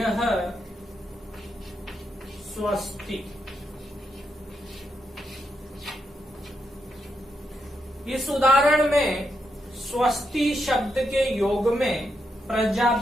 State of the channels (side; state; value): both; normal; correlation 0.82